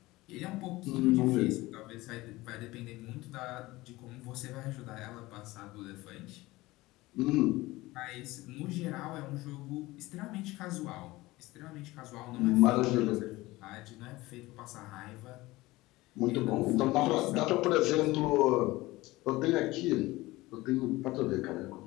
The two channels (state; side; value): quieter; right; 19.6 dB